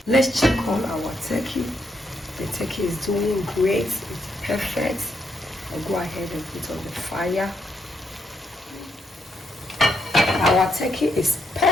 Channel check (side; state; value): both; normal; correlation 0.78